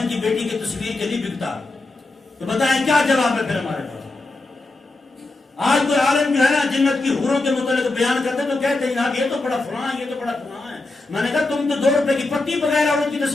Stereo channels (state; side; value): quieter; right; 3.1 dB